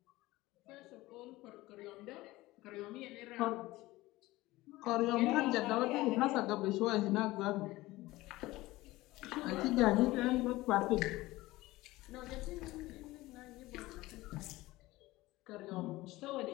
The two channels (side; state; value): right; quieter; 18.7 dB